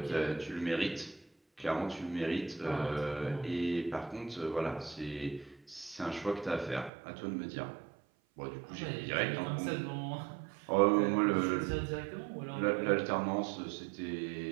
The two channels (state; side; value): drops out; left; at 6.9 s